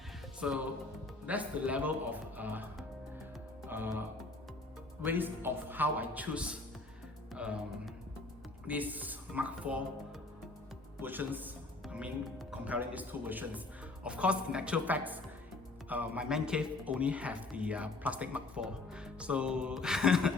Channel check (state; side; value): quieter; right; 3.2 dB